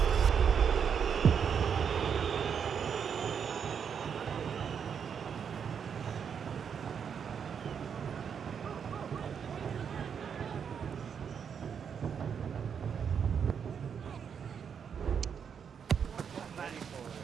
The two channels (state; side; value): quieter; left; 7.2 dB